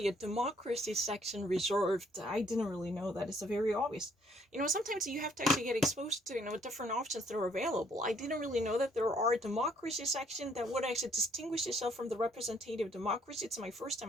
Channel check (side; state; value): both; normal; correlation 0.65